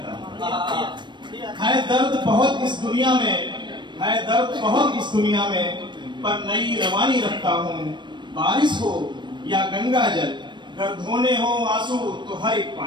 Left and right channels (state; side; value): late; left; 0.22 ms